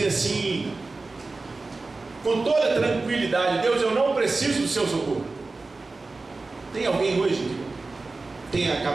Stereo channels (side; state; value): left; quieter; 3.6 dB